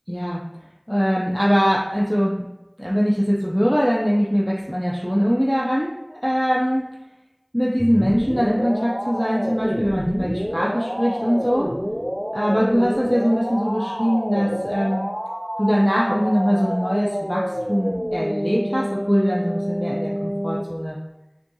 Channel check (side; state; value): both; identical; correlation 1.00